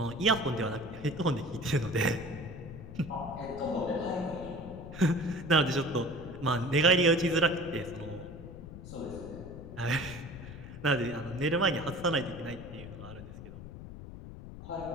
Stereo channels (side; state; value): left; noise; rumble, 12 dB below the sound